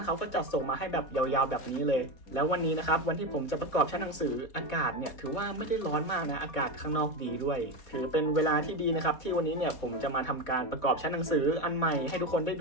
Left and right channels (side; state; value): right; late; 4.1 ms